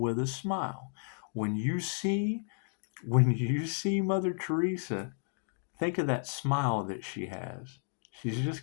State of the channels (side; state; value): right; silent; digital silence